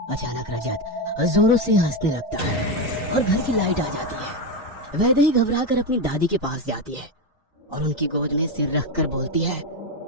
अचानक रजत जोरों से हंसने लगता है और घर की लाइट आ जाती है। वैदेही घबराकर अपनी दादी के पास जाती है और उनकी गोद में सिर रखकर बोलती है,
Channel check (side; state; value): both; normal; correlation 0.12